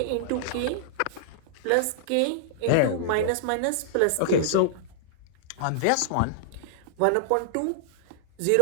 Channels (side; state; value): both; different; correlation -0.01